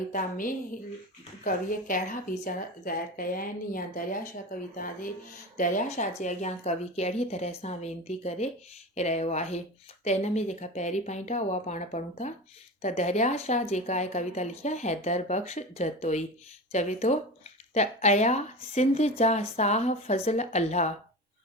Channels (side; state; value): both; normal; correlation 0.28